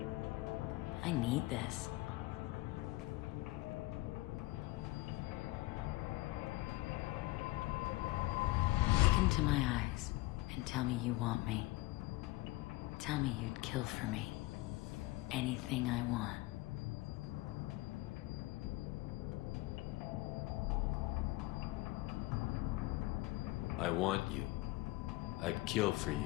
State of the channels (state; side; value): quieter; right; 20.0 dB